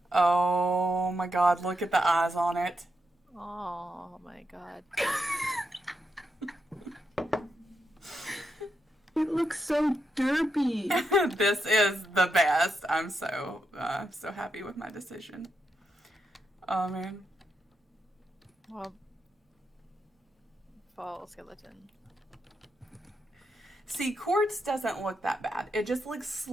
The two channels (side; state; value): both; normal; correlation 0.84